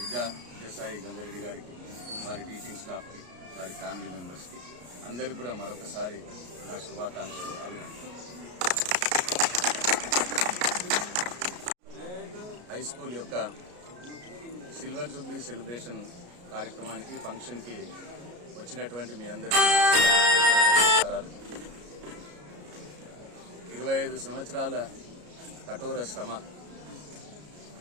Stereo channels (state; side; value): late; left; 33 ms